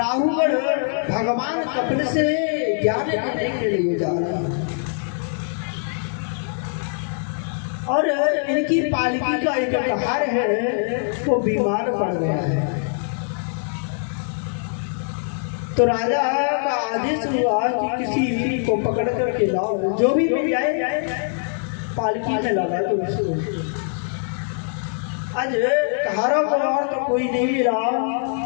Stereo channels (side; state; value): right; silent; 64 dB below the other